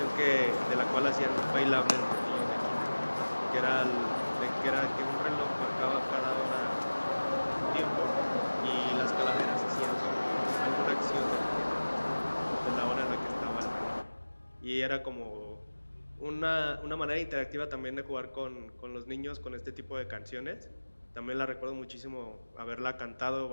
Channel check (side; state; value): both; inverted; correlation -1.00